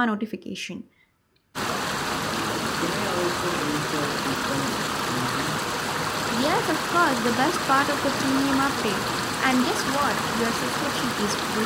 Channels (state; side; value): identical; both; correlation 1.00